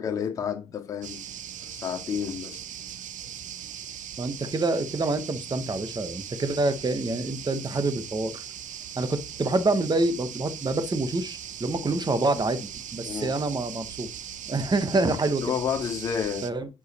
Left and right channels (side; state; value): both; normal; correlation 0.65